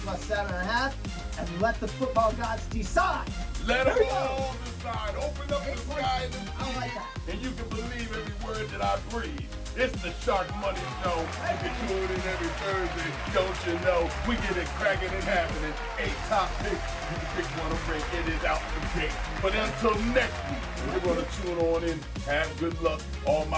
plus 7.5 and let the football gods decide. Let them all decide. Open up the sky and I like that. and you can believe every word that I breathe. It's the Sharkmoney Show. You can tune in every Thursday. Don't you know? We get it cracking and happening. 8 top picks. You can pick one or break. It is out the gate. But until next week, we're going to tune on in. Have good luck. All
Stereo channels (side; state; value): both; identical; correlation 1.00